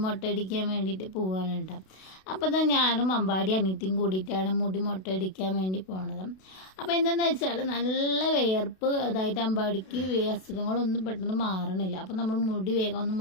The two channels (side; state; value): right; late; 32 ms